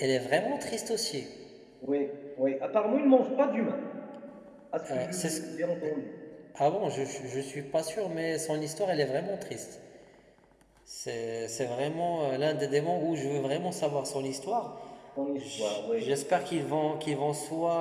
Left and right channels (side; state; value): both; identical; correlation 1.00